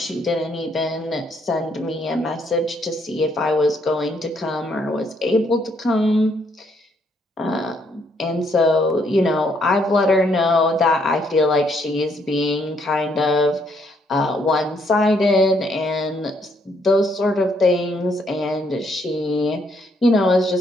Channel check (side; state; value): both; normal; correlation 0.71